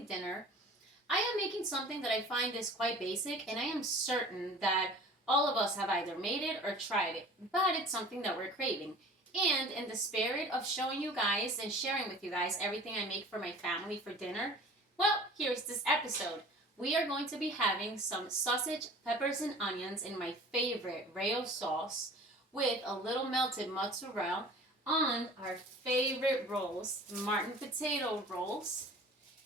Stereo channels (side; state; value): both; normal; correlation 0.44